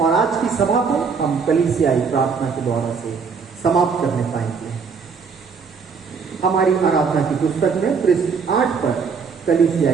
आज की सभा को हम कलीसियाई प्रार्थना के द्वारा से समाप्त करने पाएंगे। हमारी आराधना की पुस्तक में पृष्ठ 8 पर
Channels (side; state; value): left; quieter; 5.6 dB